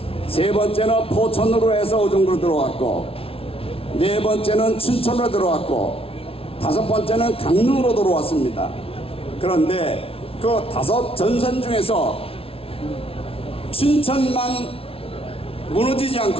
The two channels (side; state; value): right; late; 0.27 ms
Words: 세 번째는 포천으로 해서 의정부로 들어왔고, 네 번째는 춘천으로 들어왔고, 다섯 번째는 강릉으로 들어왔습니다. 그런데 그 5 전선 중에서 춘천만 무너지지